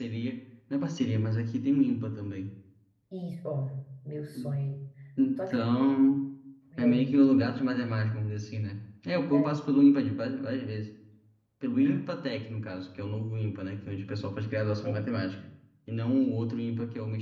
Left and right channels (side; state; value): both; identical; correlation 1.00